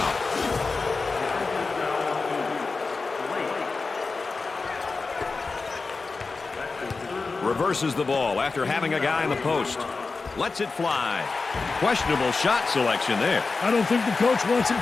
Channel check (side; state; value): right; quieter; 4.1 dB